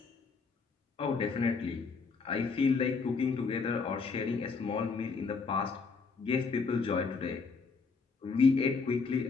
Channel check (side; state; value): right; quieter; 4.8 dB